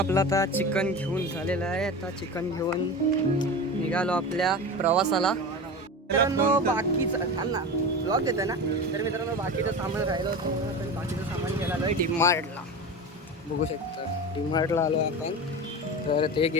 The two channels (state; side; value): normal; both; correlation 0.28